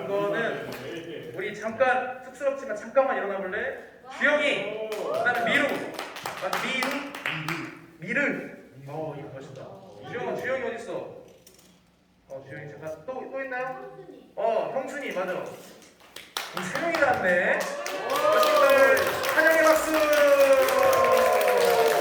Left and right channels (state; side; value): identical; both; correlation 1.00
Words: 거는 우리 잠깐 쑥스럽지만 잠깐만 일어나 볼래? 주영이, 그다음에 미르. 이거 멋있다. 주영이 어디 있어? 주영이 잠깐 또 있나요? 형순이 맞아. 우리 세 명이 나왔네. 친구들 찬양의 박수. 네,